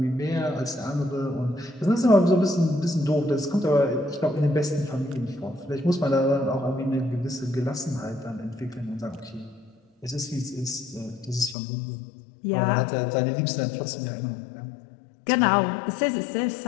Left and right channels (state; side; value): drops out; right; at 11.6 s